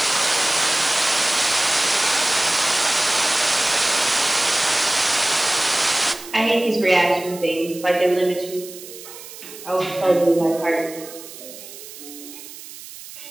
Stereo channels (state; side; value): noise; right; hiss, 15 dB below the sound